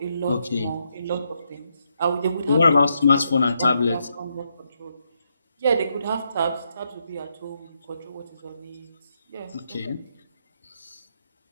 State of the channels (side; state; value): both; inverted; correlation -0.79